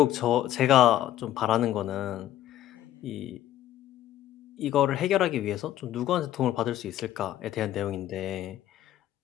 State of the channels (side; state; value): right; quieter; 12.8 dB